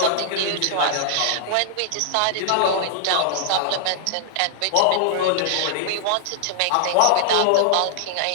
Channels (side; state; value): both; different; correlation -0.01